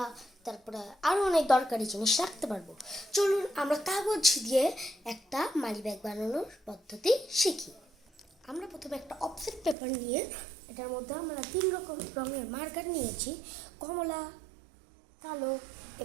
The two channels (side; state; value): left; drops out; at 9.8 s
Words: তারপরে আরও অনেক দরকারি জিনিস রাখতে পারবো। চলুন আমরা কাগজ দিয়ে একটা মানি ব্যাগ বানানোর পদ্ধতি শিখি। আমরা প্রথমে একটা অফসেট পেপার নিয়ে এটার মধ্যে আমরা 3 রকম রঙের মার্কার নিয়েছি, কমলা, কালো